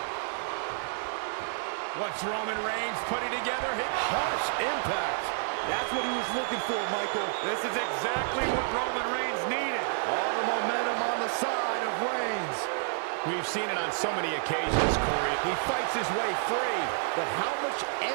What's Roman Reigns putting together? Harsh impact. That's what he was looking for, Michael. This is exactly what Roman Reigns needed. All the momentum on the side of Reigns. We've seen it on so many occasions, Corey. He fights his way free. But how much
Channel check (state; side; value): silent; left; digital silence